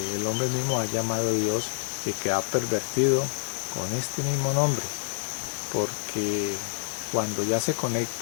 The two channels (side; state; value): right; silent; digital silence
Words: el hombre mismo ha llamado Dios y que ha pervertido con este mismo nombre, porque cuando ya se